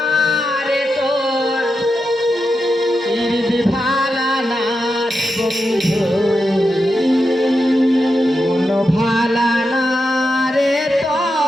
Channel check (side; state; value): both; normal; correlation 0.87